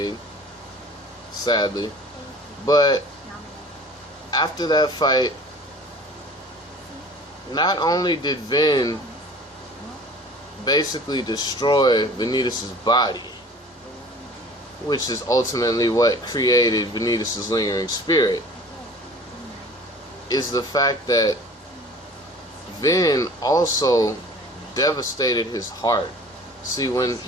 sadly. But after that fight, not only did Vin basically destroy Vanitas' body, which is ultimately what created Vanitas' lingering spirit, is the fact that Vin also devastated his heart. See, when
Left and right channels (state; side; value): normal; both; correlation 0.45